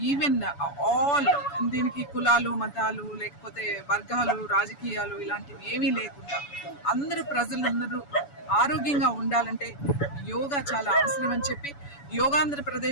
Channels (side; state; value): right; late; 7.0 ms